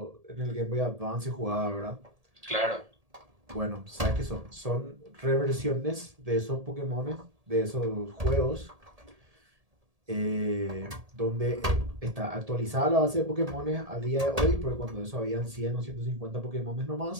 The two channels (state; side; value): late; left; 1.8 ms